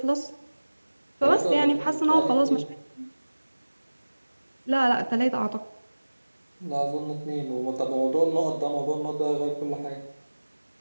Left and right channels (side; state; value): both; inverted; correlation -1.00